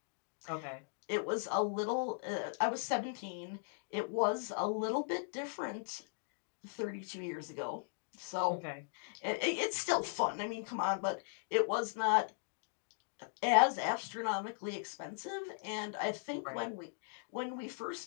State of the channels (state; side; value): silent; right; digital silence